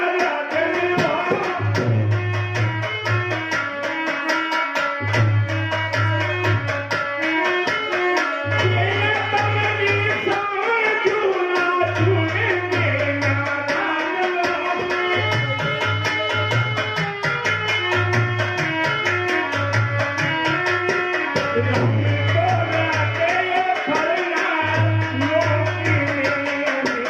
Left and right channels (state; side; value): identical; both; correlation 1.00